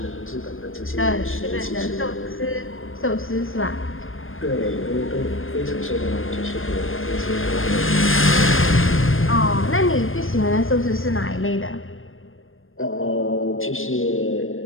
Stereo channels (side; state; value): right; late; 0.59 ms